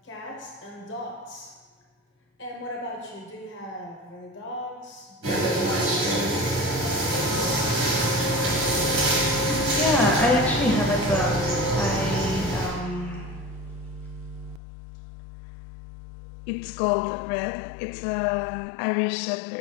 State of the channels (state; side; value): drops out; right; at 14.6 s